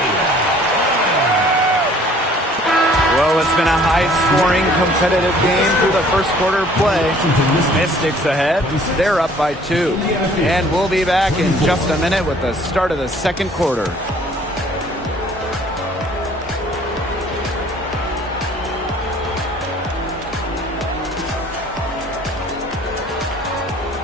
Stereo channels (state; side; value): normal; both; correlation 0.55